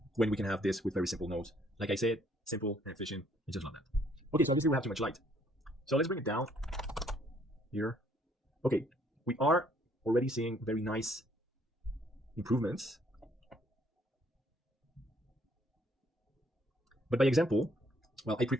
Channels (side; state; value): both; normal; correlation 0.65